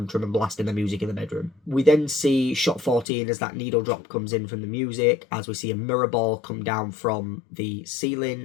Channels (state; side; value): drops out; right; at 3.1 s